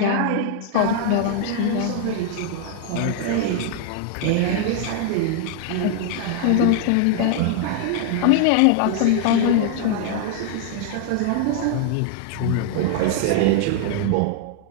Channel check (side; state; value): both; different; correlation 0.00